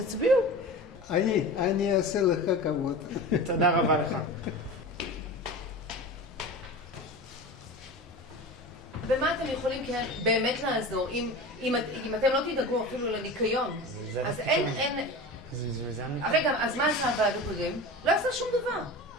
אני אעשה לך כבוד. תודה רבה לך. במה אתם יכולים באמת לעזור? אם אתם לא תדאגו אפילו לניקיון, אז אין... רגע, אז מה עשה הוועד הקודם? לא עשה שום דבר.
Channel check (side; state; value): both; normal; correlation 0.32